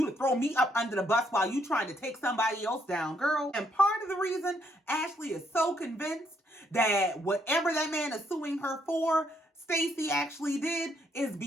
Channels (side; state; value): both; normal; correlation 0.72